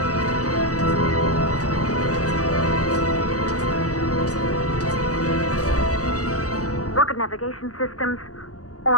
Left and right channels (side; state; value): right; late; 0.67 ms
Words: Rocket navigation systems